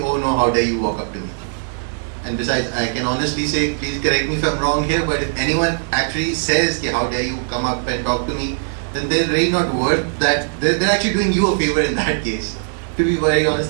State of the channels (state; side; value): silent; left; digital silence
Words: oh no, how dare you walk up to me? And besides, I can honestly say, please correct me if I'm wrong here, but if anyone actually says, how dare you come up and talk to me, then they're really not worth that. They're actually doing you a favor in that case. To be very